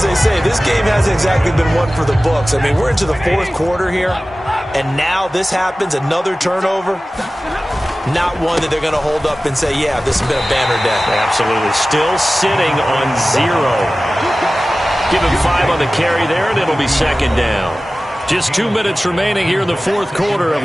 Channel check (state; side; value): normal; both; correlation 0.96